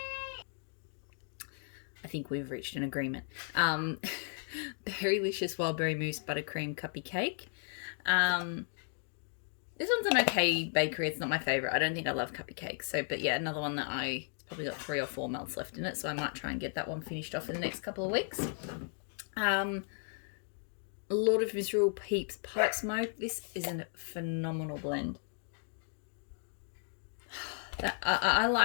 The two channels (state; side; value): silent; right; 54 dB below the other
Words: I think we've reached an agreement. Berrylicious Wildberry Mousse Buttercream Cuppy Cake. This one's an okay bakery. It's not my favourite. I don't think I love cuppy cakes. So, but yeah, another one that it's probably got 3 or 4 melts left in it. So I might try and get that one finished off in the next couple of weeks. Lord of Misrule Peeps Pipe Smoke. This is a phenomenal blend. I